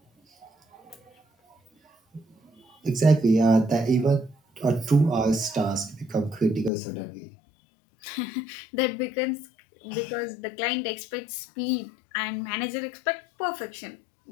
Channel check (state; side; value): drops out; right; at 6.7 s